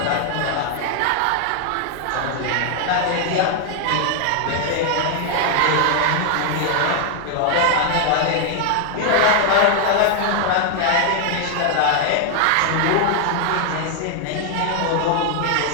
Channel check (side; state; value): both; different; correlation 0.00